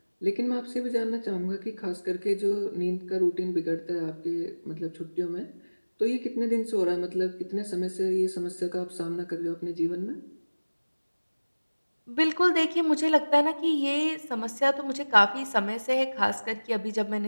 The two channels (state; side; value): inverted; both; correlation -1.00